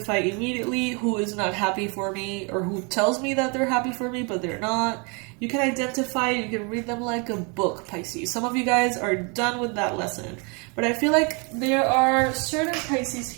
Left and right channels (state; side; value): quieter; left; 33.1 dB